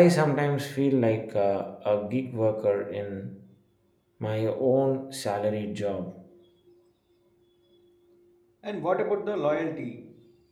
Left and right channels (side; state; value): both; identical; correlation 1.00